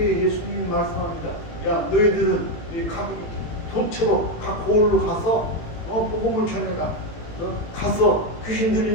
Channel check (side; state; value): right; late; 18 ms